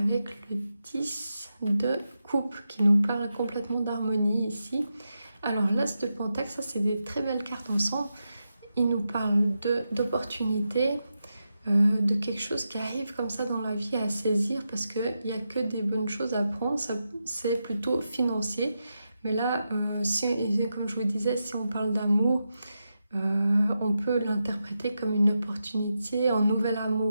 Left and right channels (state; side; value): inverted; both; correlation -0.88